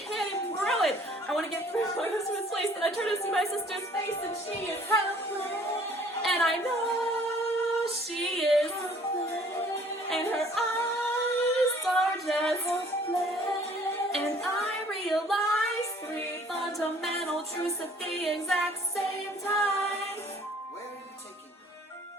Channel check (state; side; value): normal; both; correlation 0.56